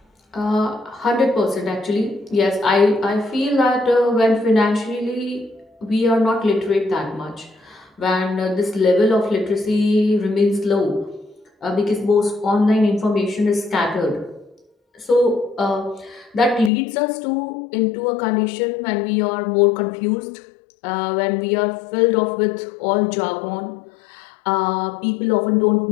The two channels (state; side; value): drops out; right; at 16.7 s